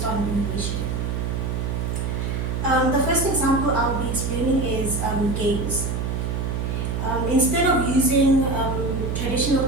on innovation. The first example I'll be explaining is games. Instead of using traditional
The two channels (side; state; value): right; noise; hum, 1 dB below the sound